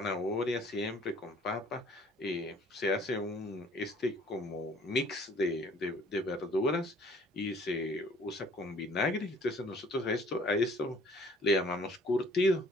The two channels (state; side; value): normal; both; correlation 0.56